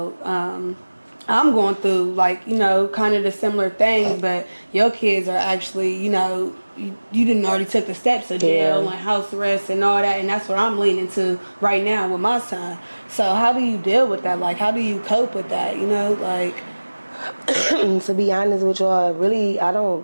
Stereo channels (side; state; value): both; inverted; correlation -1.00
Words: I'm going through kind of the similar things, but your kids are actually, you didn't already took the steps of jail and house arrest and all that, and that's what I'm leaning to right now with my son. So how do you deal with that? How do you cope with that? To be honest with y'all, really, I